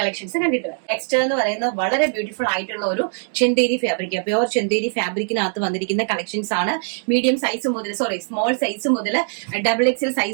കണ്ടിട്ട് വരാം. നെക്സ്റ്റ് എന്ന് പറയുന്നത് വളരെ ബ്യൂട്ടിഫുൾ ആയിട്ടുള്ള ഒരു ചെന്തേരി ഫാബ്രിക്, പ്യോർ ചെന്തേരി ഫാബ്രിക്കിനകത്ത് വന്നിരിക്കുന്ന കളക്ഷൻസ് ആണ്. മീഡിയം സൈസ് മുതൽ സ്മോൾ സൈസ് മുതൽ XXL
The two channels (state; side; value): silent; left; digital silence